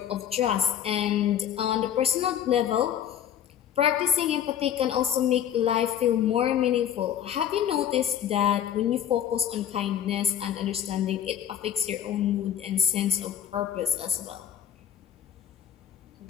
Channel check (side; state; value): right; quieter; 9.8 dB